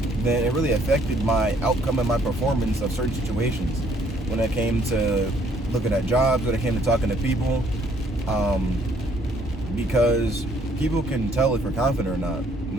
then it really affected my outcome and my performance of certain situations. When it came to looking at jobs, when it came to talking to people, because people can tell if you're confident or not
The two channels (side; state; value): both; normal; correlation 0.64